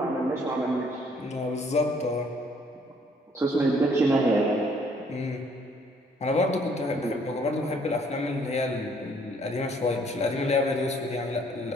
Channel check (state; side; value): normal; both; correlation 0.63